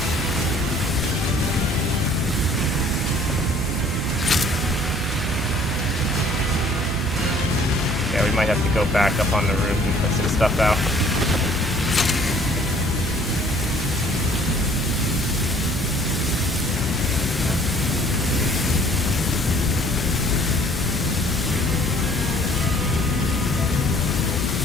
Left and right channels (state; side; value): normal; both; correlation 0.56